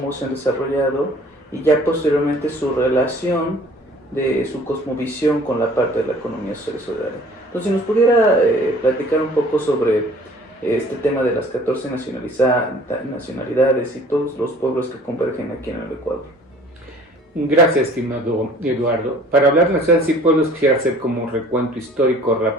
se han desarrollado y ya posteriormente su relación de su cosmovisión con la parte de la economía social y solidaria. Entonces, si nos pudiera platicar un poco sobre este tema de las 14 nacionalidades y todos los pueblos que convergen aquí en el Ecuador. Gracias, estimado Eduardo. Para hablar de naciones y pueblos, quisiera hacer como un recuento histórico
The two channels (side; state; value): both; normal; correlation 0.52